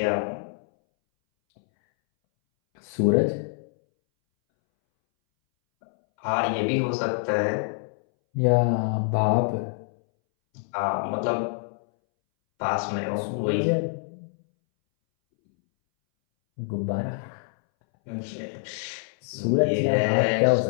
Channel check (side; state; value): right; silent; 61 dB below the other